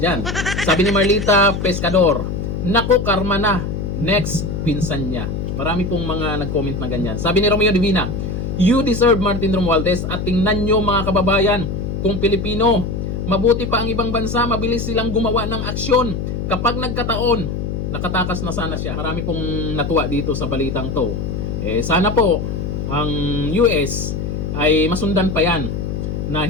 Sabi ni Marlita Pescador, naku, karma na, next, pinsan niya. Marami pong mga nag-comment na ganyan. Sabi ni Romeo Divina, you deserve Martin Romualdez at tingnan nyo mga kababayan, kung Pilipino, mabuti pa ang ibang bansa, mabilis silang gumawa ng aksyon. Kapag nagkataon, nakatakas na sana siya. Marami pong natuwa dito sa balitang to. Eh sana po, ang US ay masundan pa yan na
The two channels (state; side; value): noise; left; hum, 3 dB below the sound